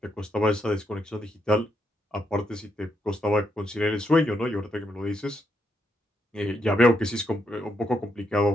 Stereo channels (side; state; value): both; normal; correlation 0.79